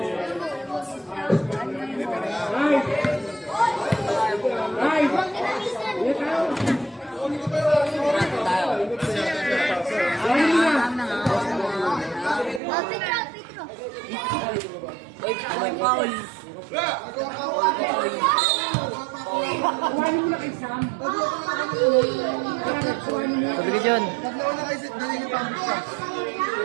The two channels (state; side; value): drops out; left; at 12.6 s